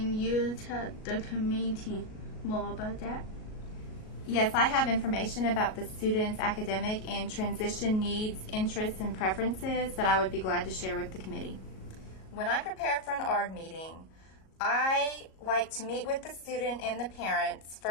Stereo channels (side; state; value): right; late; 37 ms